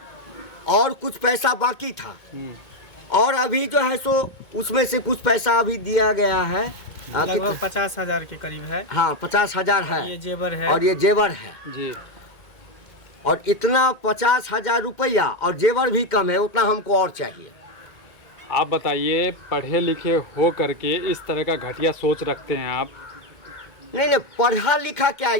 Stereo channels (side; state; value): right; late; 2.0 ms